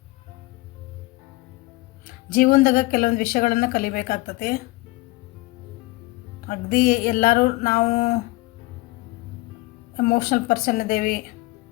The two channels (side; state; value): right; quieter; 22.0 dB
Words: ಜೀವನದಾಗ ಕೆಲವೊಂದು ವಿಷಯಗಳನ್ನು ಕಲಿಬೇಕಾಗ್ತದೆ. ಅಗದಿ ಎಲ್ಲರೂ ನಾವು ಎಮೋಷ್ನಲ್ ಪರ್ಸನ್ ಇದ್ದೇವೆ.